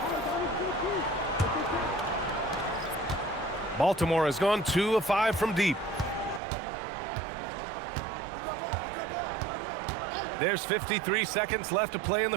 Baltimore has gone 2 of 5 from deep. There's 53 seconds left to play in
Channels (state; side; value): drops out; left; at 6.4 s